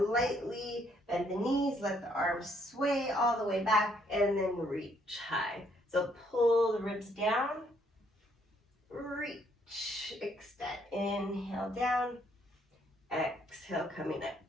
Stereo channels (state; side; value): normal; both; correlation 0.69